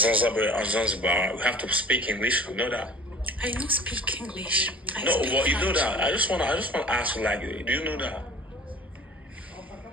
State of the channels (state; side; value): normal; both; correlation 0.45